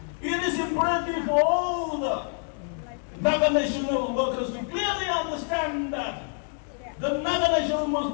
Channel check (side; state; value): right; silent; 55 dB below the other